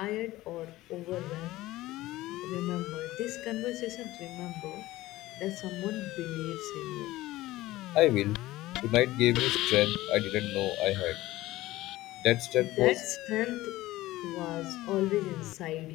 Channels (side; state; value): right; quieter; 17.1 dB